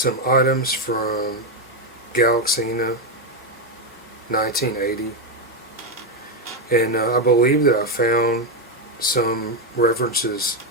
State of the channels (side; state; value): both; normal; correlation 0.06